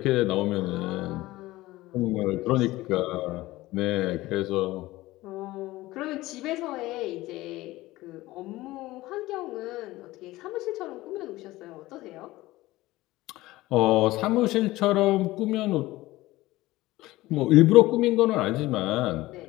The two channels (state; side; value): quieter; right; 18.1 dB